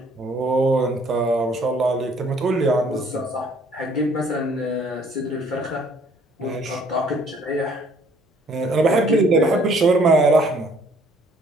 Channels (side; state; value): both; normal; correlation 0.60